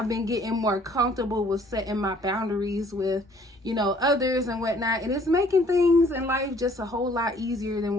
been getting more comfortable with setting my boundaries with, you know, others and whatnot, and it's making things in life just a whole lot easier than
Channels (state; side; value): normal; both; correlation 0.59